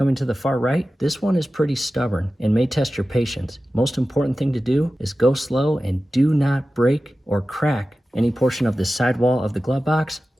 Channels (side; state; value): both; normal; correlation 0.95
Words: to the far right, this one is pretty stubborn and may test your patience. Most important thing to do is go slow and do not break or crack any portion of the sidewall of the glove box